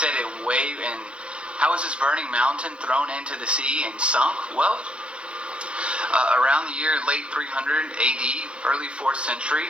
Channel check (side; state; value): left; late; 0.058 ms